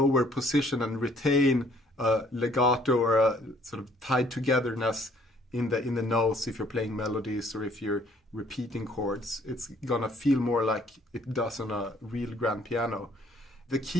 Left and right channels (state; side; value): normal; both; correlation 0.61